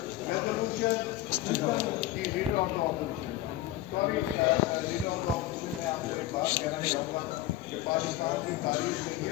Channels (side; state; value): right; quieter; 14.3 dB